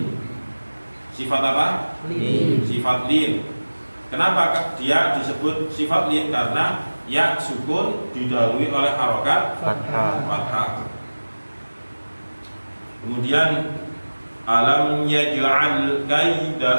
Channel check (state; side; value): inverted; both; correlation -1.00